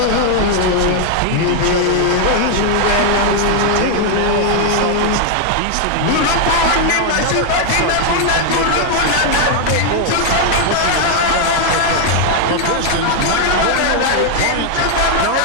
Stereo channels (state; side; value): different; both; correlation 0.00